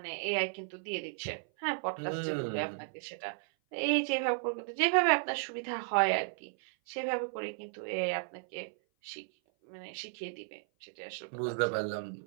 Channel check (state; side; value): silent; left; 55 dB below the other